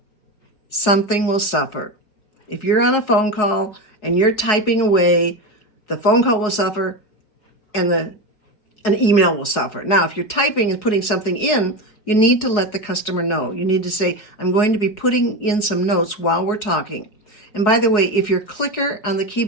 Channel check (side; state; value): right; late; 4.8 ms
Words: Something will suffer. If you're on a phone call and you're typing away, the phone call will suffer and an email will suffer. Now, if you're typing and putting something in, you need to let the customer know. You need to say, I'm going to be putting in some notes while we're talking. And by the way, if your clicker on the